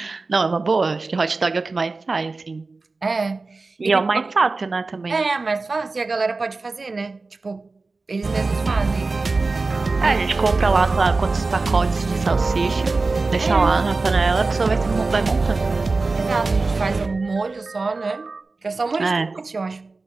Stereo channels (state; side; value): quieter; left; 3.7 dB